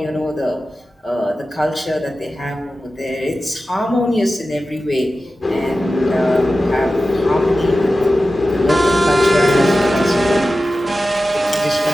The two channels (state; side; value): normal; both; correlation 0.94